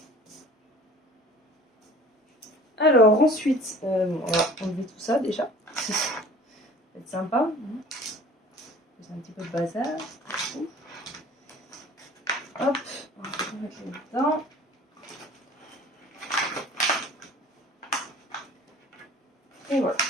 Alors ensuite, on va enlever tout ça déjà. Ça va être sympa. C'est un petit peu de bazar. Hop, on va mettre là-dedans. Et voilà.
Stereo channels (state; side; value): normal; both; correlation 0.47